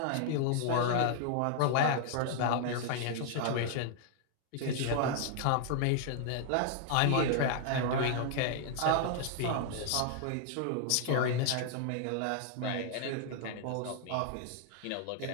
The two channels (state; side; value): different; both; correlation 0.00